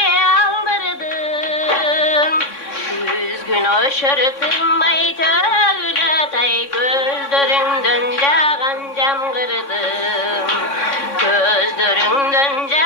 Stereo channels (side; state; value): right; late; 3.6 ms